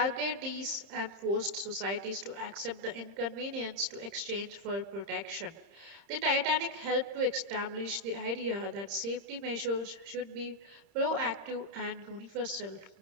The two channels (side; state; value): left; late; 30 ms